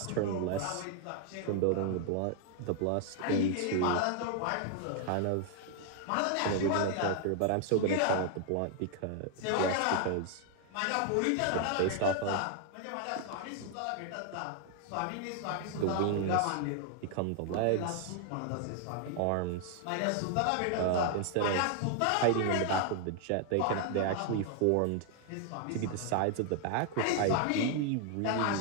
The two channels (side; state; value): both; different; correlation 0.00